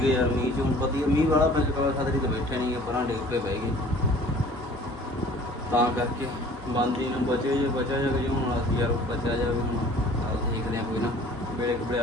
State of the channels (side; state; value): both; normal; correlation 0.49